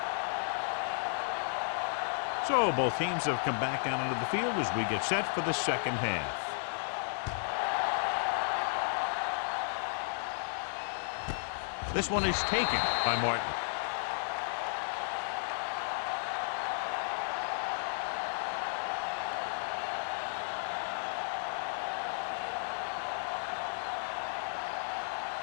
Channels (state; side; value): silent; right; digital silence